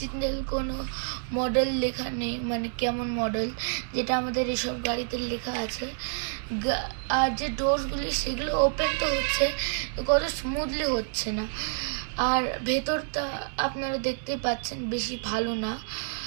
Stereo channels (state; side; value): silent; left; digital silence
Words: কোনো মডেল লেখা নেই, মানে কেমন মডেল, যেটা আমাদের এসব গাড়িতে লেখা আছে। আর যে ডোরসগুলি সেগুলো ওপেন তো হচ্ছে, কত স্মুথলি হচ্ছে না। আর ভেতরটা আপনারা দেখতে পাচ্ছেন বেশি ভালো না,